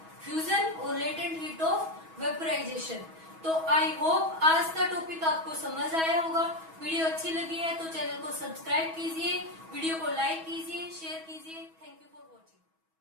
फ्यूजन और लेटेंट हीट ऑफ वेपराइजेशन। तो आई होप आज का टॉपिक आपको समझ आया होगा। वीडियो अच्छी लगी है तो चैनल को सब्सक्राइब कीजिए, वीडियो को लाइक कीजिए, शेयर कीजिए।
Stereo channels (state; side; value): late; left; 6.2 ms